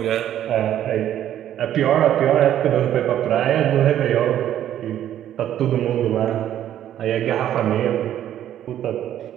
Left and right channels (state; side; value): quieter; left; 11.3 dB